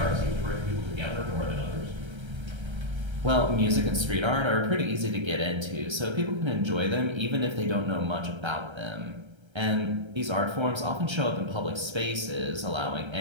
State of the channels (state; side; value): late; left; 1.3 ms